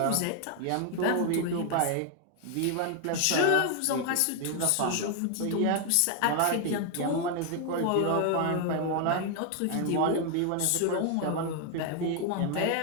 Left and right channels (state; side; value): different; both; correlation 0.00